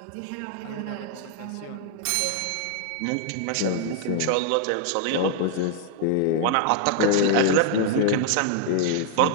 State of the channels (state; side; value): different; both; correlation 0.00